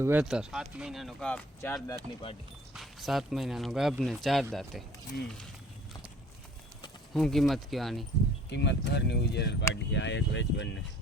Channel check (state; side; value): normal; both; correlation 0.52